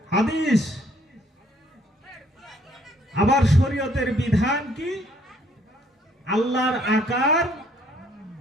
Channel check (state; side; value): normal; both; correlation 0.64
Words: হাদিস, আবার শরীয়তের বিধান কি? আল্লাহর আকার